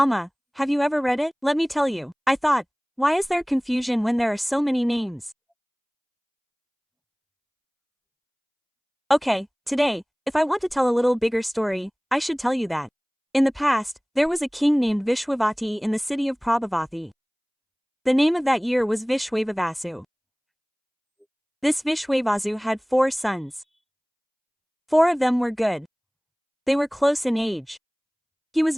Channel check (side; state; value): both; identical; correlation 1.00